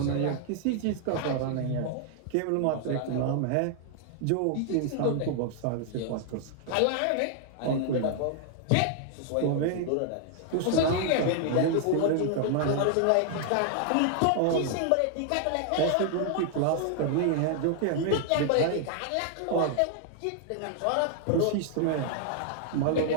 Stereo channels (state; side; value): different; both; correlation 0.00